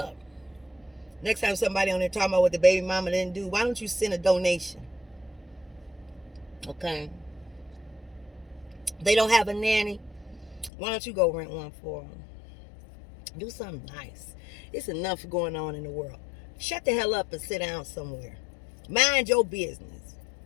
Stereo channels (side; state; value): right; drops out; at 10.7 s